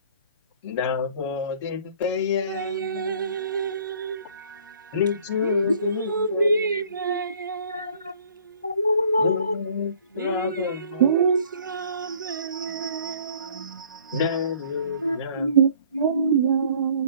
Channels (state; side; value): inverted; both; correlation -0.56